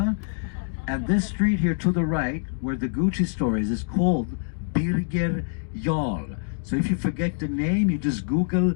And this street here to the right, where the Gucci store is called Birger Jarl. So if you forget the name, you just Google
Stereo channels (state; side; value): silent; right; digital silence